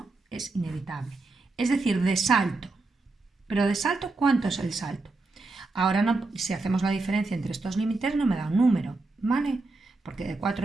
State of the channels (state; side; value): quieter; left; 3.4 dB